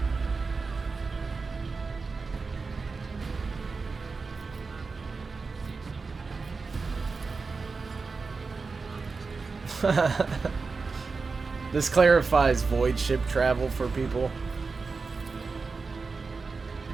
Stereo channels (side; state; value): left; quieter; 4.4 dB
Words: This clarifies void ship travel for people.